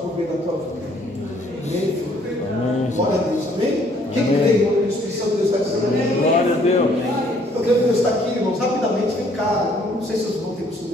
por meio da tua vida. Amém, filho? Amém. Glória a Deus. Amém? Quem crê, irmão, que o Espírito Santo de Deus está dizendo amém? Glória a Deus. Eu creio que Deus está aqui, irmãos. Rapidamente, vem cá. Não sei se vocês vão ter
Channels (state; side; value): normal; both; correlation 0.63